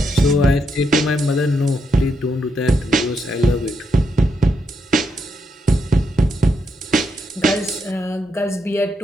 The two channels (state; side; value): normal; both; correlation 0.80